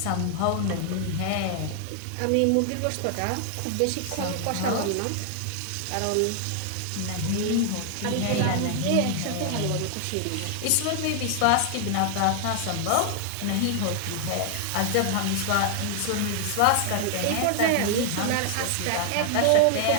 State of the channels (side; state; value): both; different; correlation 0.00